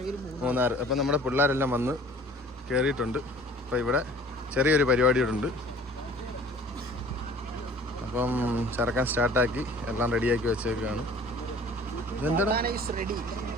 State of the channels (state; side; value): normal; both; correlation 0.49